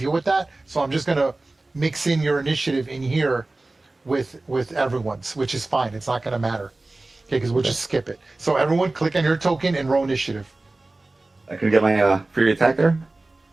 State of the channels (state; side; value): quieter; left; 3.0 dB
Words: with that. So I'm just gonna mix in your initiative in here with everyone's, which is fine. It's not gonna matter. Okay, because we'll just skip it. So everyone click on your token and roll initiative. I could get my free attack there.